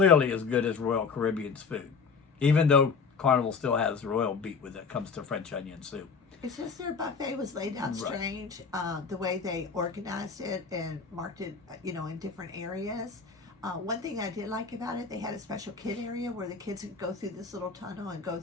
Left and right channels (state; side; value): quieter; right; 5.3 dB